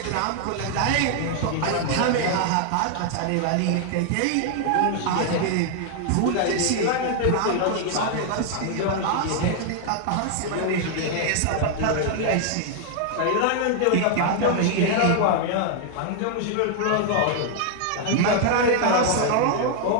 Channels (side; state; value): both; different; correlation 0.00